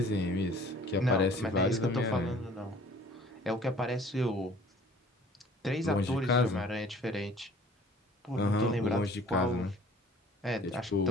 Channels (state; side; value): normal; both; correlation 0.52